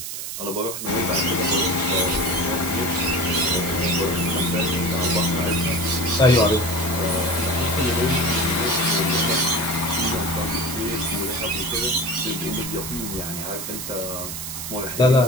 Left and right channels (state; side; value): noise; right; hiss, 6 dB below the sound